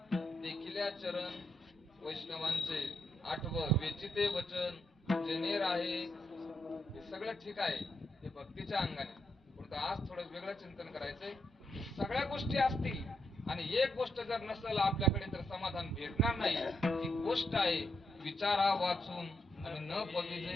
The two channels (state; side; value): normal; both; correlation 0.81